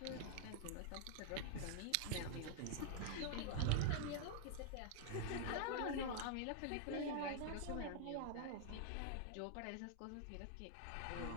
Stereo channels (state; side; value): different; both; correlation 0.00